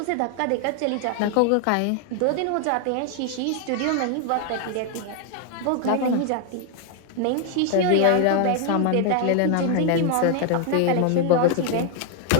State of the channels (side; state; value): both; different; correlation 0.00